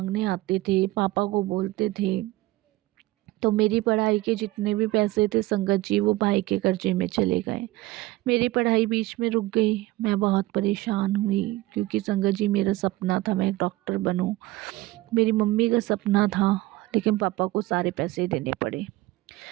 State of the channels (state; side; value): quieter; left; 18.5 dB